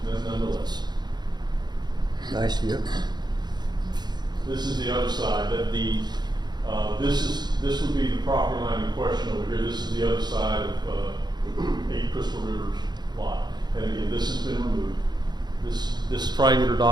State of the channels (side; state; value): left; late; 0.21 ms